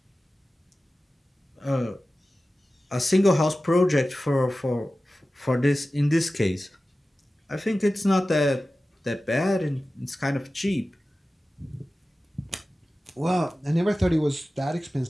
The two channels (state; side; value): normal; both; correlation 0.95